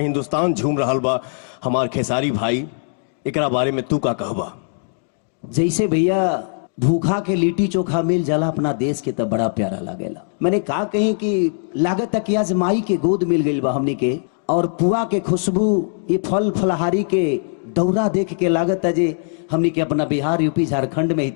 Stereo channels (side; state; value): right; silent; digital silence